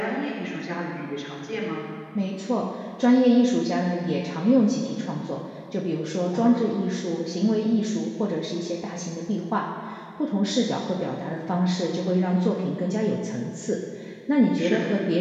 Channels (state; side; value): identical; both; correlation 1.00